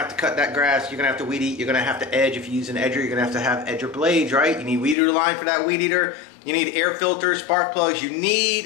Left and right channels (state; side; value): drops out; right; at 5.0 s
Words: to cut that grass, you're gonna have to weed eat, you're gonna have to edge. If you use an edger, you're gonna have edger blades, right? You need weed eater line for that weed eater. You need air filters, spark plugs. You